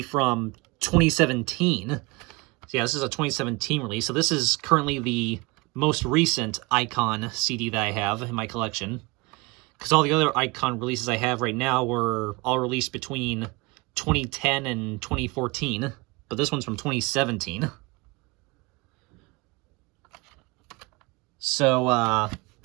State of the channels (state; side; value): quieter; left; 25.4 dB